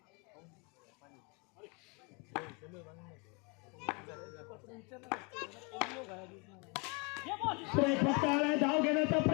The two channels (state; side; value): quieter; right; 31.1 dB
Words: फटका आलाय. धाव घेण्याचा